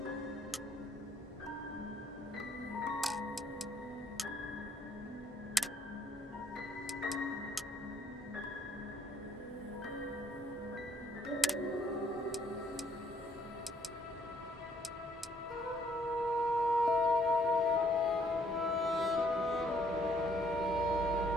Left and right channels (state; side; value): normal; both; correlation 0.66